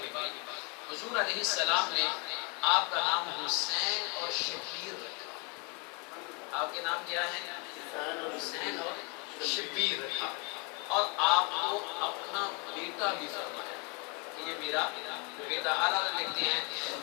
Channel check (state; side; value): quieter; right; 32.8 dB